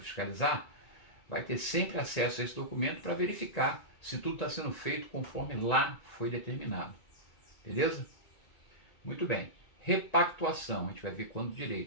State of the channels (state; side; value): late; right; 2.2 ms